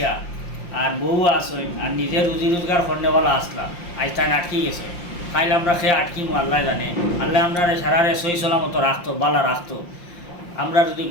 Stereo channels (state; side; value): late; right; 5.7 ms